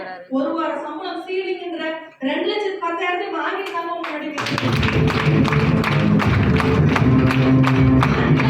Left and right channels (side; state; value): both; identical; correlation 1.00